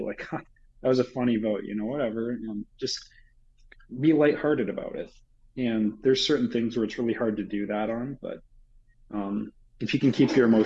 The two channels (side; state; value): both; identical; correlation 1.00